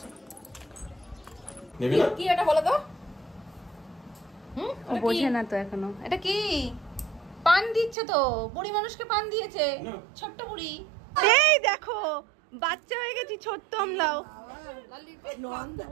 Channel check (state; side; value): drops out; left; at 8.0 s